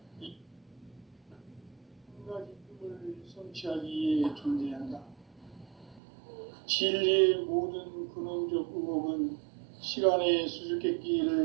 한 가지 꿈을 성취하기 위해 존재한다. 진리의 모든 근원적 의혹은 시간의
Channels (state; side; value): drops out; left; at 6.0 s